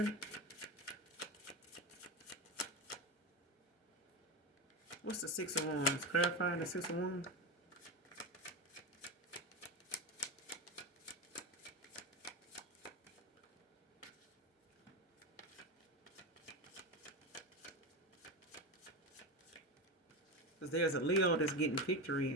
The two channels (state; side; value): normal; both; correlation 0.18